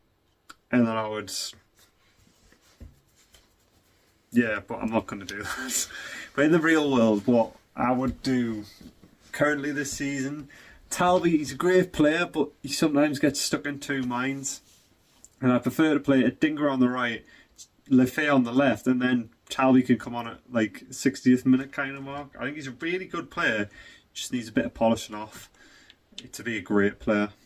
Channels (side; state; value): both; identical; correlation 1.00